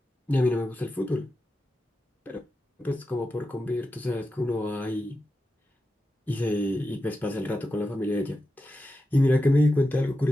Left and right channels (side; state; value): both; normal; correlation 0.90